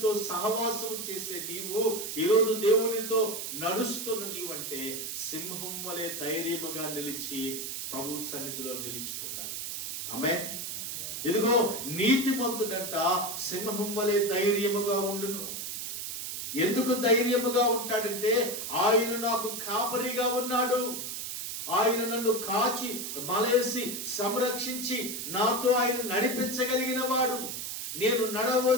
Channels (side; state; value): right; noise; hiss, 5 dB below the sound